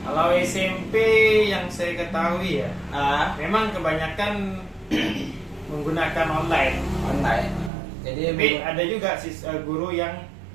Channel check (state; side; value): drops out; left; at 7.7 s